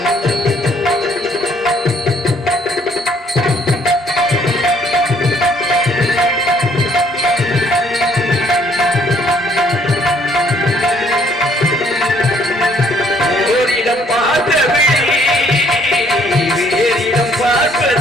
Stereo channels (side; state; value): both; normal; correlation 0.64